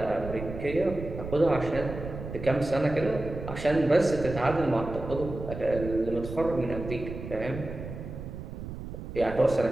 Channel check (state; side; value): noise; right; rumble, 9 dB below the sound